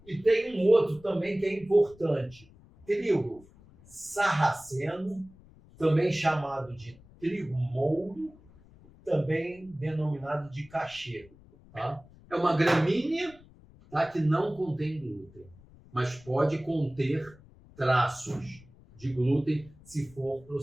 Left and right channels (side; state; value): left; noise; rumble, 24 dB below the sound